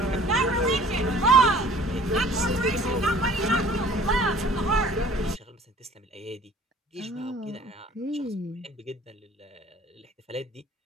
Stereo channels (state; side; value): normal; both; correlation 0.51